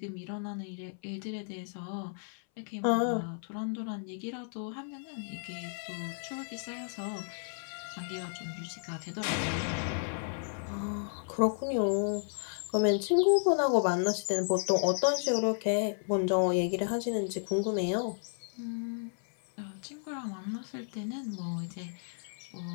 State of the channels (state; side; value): silent; right; 56 dB below the other